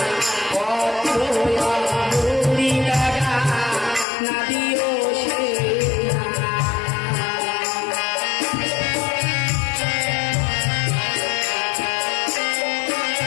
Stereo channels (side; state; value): right; drops out; at 4.0 s